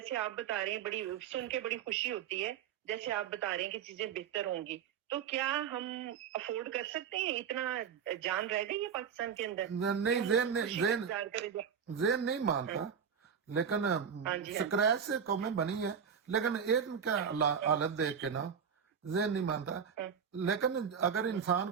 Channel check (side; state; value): left; quieter; 7.3 dB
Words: آپ بتا رہے ہیں، بڑی سن کے بڑی خوشی ہوتی ہے، جیسے آپ بتا رہے ہیں کہ چیزیں بہتر ہوں گی، تو کیا ہم افورڈ کر سکتے ہیں؟ اتنا جان رہ گئی ہے پاکستان کے اندر؟ نہیں، ذہن نہیں مانتا، لیکن سکریچ سے قومیں بنی ہے، لیکن ایک کا حالت دیکھ کے نا ذہن نہیں مانتا، لیکن اگر انسان